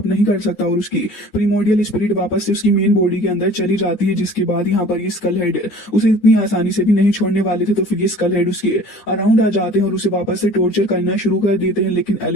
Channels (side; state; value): right; late; 9.8 ms